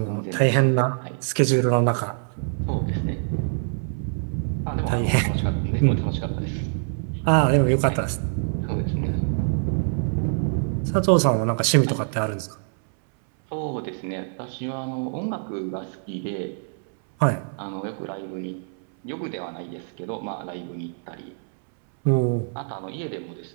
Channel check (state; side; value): silent; left; 62 dB below the other